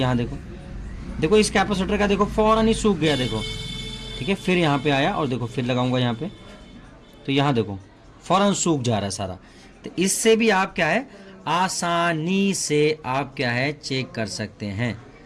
देखो, देखो इस कैपेसिटर का देखो फौरन ही सूख गया, देखो, ठीक है। फिर यहाँ पे आया, और देखो फिर लगाऊंगा यहाँ पे, तो यहाँ देखो फौरन सूख जा रहा है सारा। तो इससे भी आप क्या है, आसानी से आप क्या है चेक कर सकते हैं।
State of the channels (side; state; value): both; identical; correlation 1.00